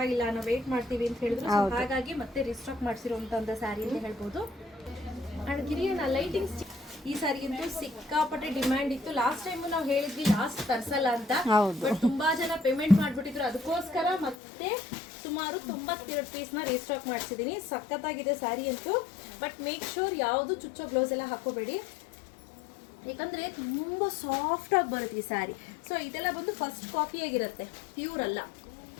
ನಾವು ವೇಟ್ ಮಾಡ್ತೀವಿ ಅಂತ ಹೇಳಿದ್ರು. So ಹಾಗಾಗಿ ಮತ್ತೆ ರಿಸ್ಟಾಕ್ ಮಾಡಿಸಿರುವಂತ ಸ್ಯಾರಿ ಅಂತ ಹೇಳ್ಬೋದು. ಅಂಡ್ ಗಿರಿಯನ ಲೈಟಿಂಗ್ಸ್ ಈ ಸಾರಿ ಅಂತೂ ಸಿಕ್ಕಾಪಟ್ಟೆ ಡಿಮ್ಯಾಂಡ್ ಇತ್ತು. ಲಾಸ್ಟ್ ಟೈಮ್ ನಾವು ಹೇಳಿದ್ವಿ ಲಾಸ್ಟ್ ತರ್ಸಲ್ಲ ಅಂತ, ಬಟ್ ತುಂಬಾ ಜನ ಪೇಮೆಂಟ್ ಮಾಡ್ಬಿಟ್ಟಿದ್ರು. ಅದಕ್ಕೋಸ್ಕರ ಮತ್ತೆ ಸುಮಾರು 92 ಪೀಸ್ನ ರೀಸ್ಟಾಕ್ ಮಾಡಿಸಿದ್ದೀನಿ. ಸಖತ್ತಾಗಿದೆ ಸ್ಯಾರಿ ಅಂತೂ. ಬಟ್ ಮೇಕ್ ಶೋರ್ ಯಾವುದು ಚುಚ್ಚೋ ಬ್ಲೌಸ್ ಎಲ್ಲ ಹಾಕೋಬೇಡಿ, ಯಾಕಂದ್ರೆ ತುಂಬಾ ಸಾಫ್ಟ್ ಆಗಿ ಬರುತ್ತೆ ಈ ಸ್ಯಾರಿ. ಸೊ ಇದೆಲ್ಲ ಬಂದು ಫಸ್ಟ್ ಕಾಪಿ ಆಗಿರುತ್ತೆ, ಪ್ಯೂರ್ ಅಲ್ಲ,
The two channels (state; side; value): drops out; right; at 14.4 s